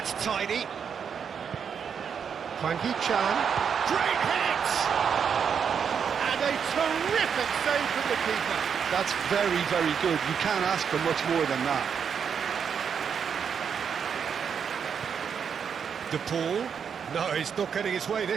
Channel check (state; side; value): quieter; left; 7.1 dB